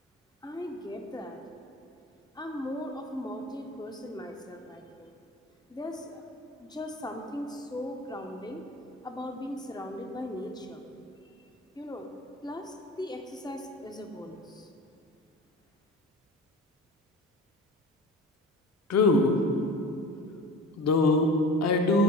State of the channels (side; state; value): both; normal; correlation 0.37